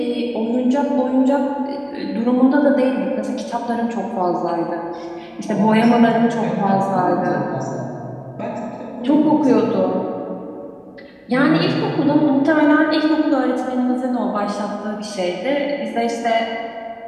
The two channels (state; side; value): identical; both; correlation 1.00